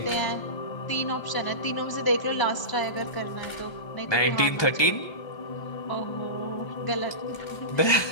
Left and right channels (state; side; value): late; right; 1.2 ms